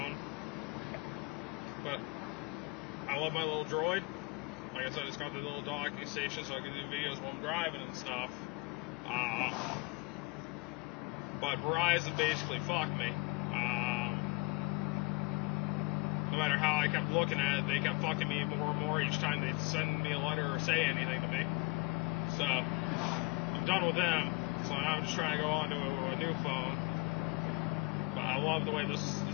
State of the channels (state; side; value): quieter; right; 26.9 dB